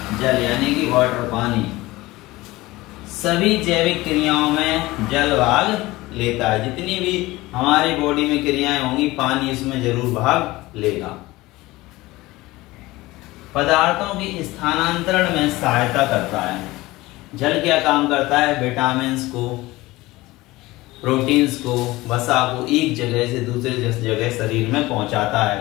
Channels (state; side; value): quieter; right; 19.5 dB